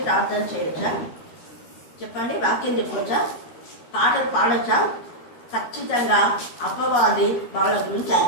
ప్రార్థన చేయొచ్చా? చెప్పండి, వాక్యం చెప్పవచ్చా, పాటలు పాడొచ్చా? ఖచ్చితంగా అపవాది వాళ్ళ గురించి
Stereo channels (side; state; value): right; late; 13 ms